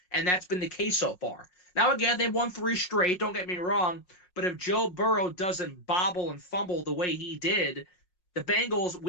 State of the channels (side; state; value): right; late; 5.5 ms